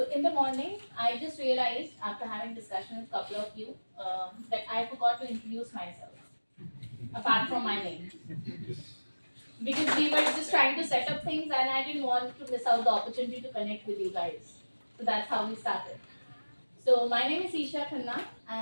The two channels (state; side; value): inverted; both; correlation -1.00